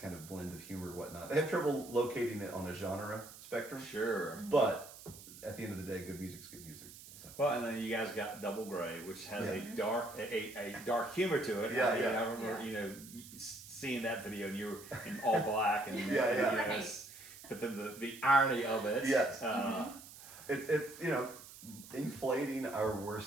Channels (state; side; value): noise; right; hiss, 16 dB below the sound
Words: of blend of humor and whatnot. They have trouble locating it on a genre spectrum. Sure. But at the end of the day, good music's good music. So. Well, and then you guys got Double Gray, which has a dark humor to it. I remember, seeing that video, and you were in all black, and but then the irony of it. Yes. It's inflating our